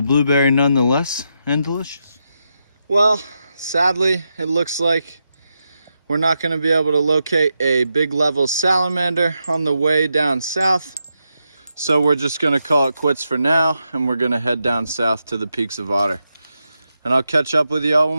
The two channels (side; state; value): both; inverted; correlation -0.85